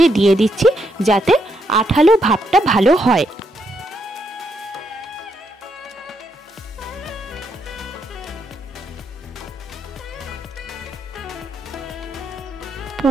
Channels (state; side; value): normal; both; correlation 0.78